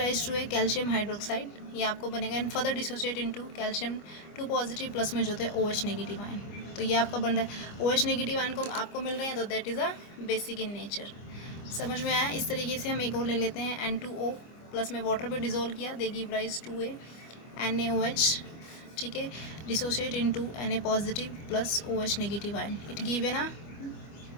to a calcium hydroxide, ये आपको बनेगा, and further dissociate into calcium 2 positive plus में जो होते हैं OH नेगेटिव आयन, तो ये आपका बन रहा है। OH नेगेटिव आयन को आपको मिल रहे हैं, तो that is a basic in nature. समझ में आया। इस तरीके से हम एक और ले लेते हैं, N2O प्लस में वाटर पे डिजोल्व किया, they give rise to a NaOH, ठीक है, dissociate into Na positive plus OH negative ion, it give है ना,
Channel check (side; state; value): right; late; 25 ms